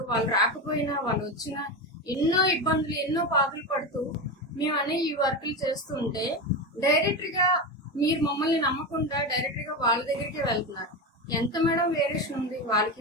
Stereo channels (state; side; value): normal; both; correlation 0.18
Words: వాళ్ళు రాకపోయినా వాళ్ళు వచ్చినా ఎన్నో ఇబ్బందులు, ఎన్నో బాధలు పడుతూ మేము అనే ఈ వర్కులు చేస్తూ ఉంటే డైరెక్ట్గా మీరు మమ్మల్ని నమ్మకుండా డైరెక్ట్గా వాళ్ళ దగ్గరికే వెళ్తున్నారు. ఎంత మేడం వేరియేషన్ ఉంది